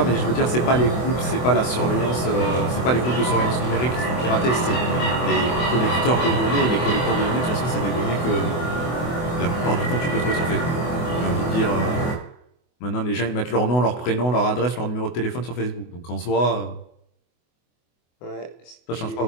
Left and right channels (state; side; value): late; right; 24 ms